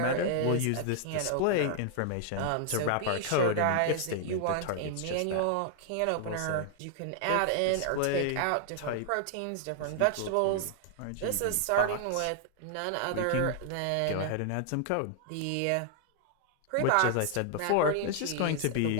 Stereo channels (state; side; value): different; both; correlation 0.00